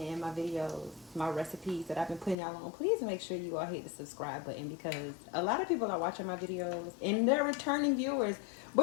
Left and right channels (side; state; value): right; drops out; at 2.4 s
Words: and my videos, my recipes that I've been putting y'all on, please make sure you all hit the subscribe button, because a lot of people are watching my videos and they're returning viewers,